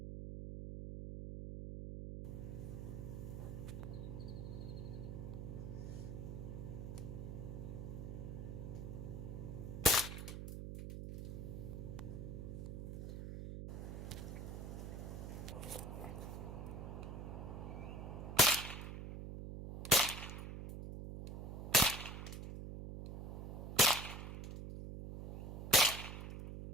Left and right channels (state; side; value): noise; right; hum, 6 dB below the sound